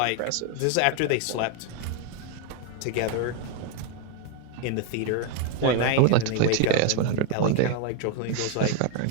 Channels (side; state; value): both; different; correlation 0.01